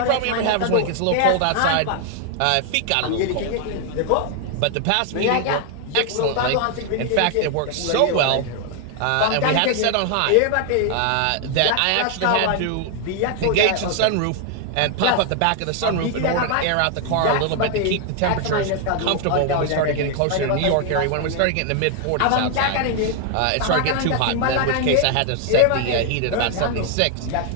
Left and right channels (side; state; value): both; different; correlation 0.00